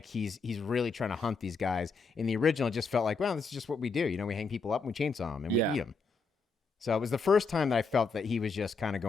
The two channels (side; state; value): right; quieter; 4.4 dB